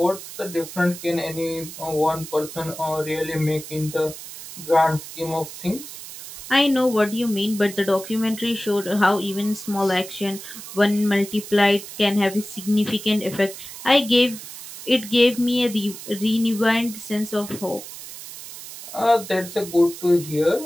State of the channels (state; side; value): noise; right; hiss, 12 dB below the sound